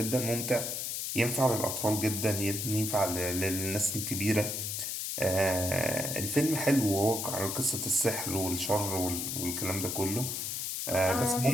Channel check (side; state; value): left; noise; hiss, 3 dB below the sound